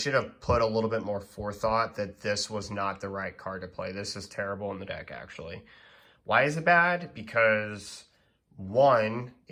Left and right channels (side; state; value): both; identical; correlation 1.00